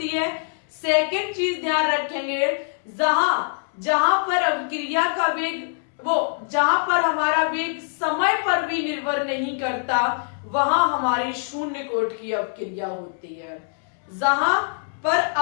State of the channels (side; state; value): right; silent; digital silence